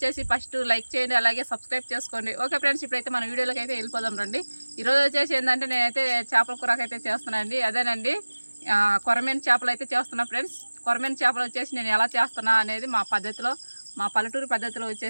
ఫస్ట్ లైక్ చేయండి, అలాగే సబ్స్క్రైబ్ చేసుకోండి. ఓకే ఫ్రెండ్స్, ఇప్పుడైతే మన వీడియోలోకి అయితే వెళ్ళిపోదాం రండి. ఈరోజు వచ్చేసి ఏంటంటే నేనైతే చేపల కూరకు అయితే చేస్తున్నానండి. అదేనండి, కొరమేను చేపలు అయితే చేస్తున్నా ఫ్రెండ్స్. కొరమేను చేపలు వచ్చేసి నేను ఎలా చేస్తున్నా అనేది మా పద్ధతిలో, మా పల్లెటూరు పద్ధతిలో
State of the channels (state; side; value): inverted; both; correlation -1.00